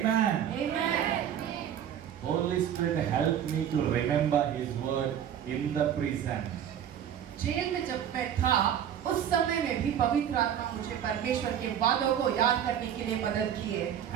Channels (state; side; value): quieter; left; 9.5 dB